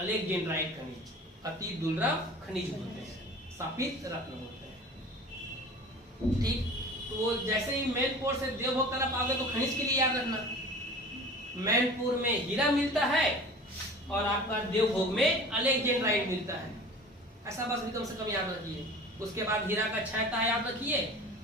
खनिज, अति दुर्लभ खनिज बोलते हैं, शापित रत्न बोलते हैं। ठीक, तो जैसे ही मैनपुर से देवभोग तरफ आओगे तो खनिज के लिए याद रखना, मैनपुर में हीरा मिलता है और आपका देवभोग में अलेक्जेंड्राइट मिलता है। ऐसा बस भी कम से कम याद रखिए। उसके बाद हीरा का 6 तह याद रखिए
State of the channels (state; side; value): normal; both; correlation 0.40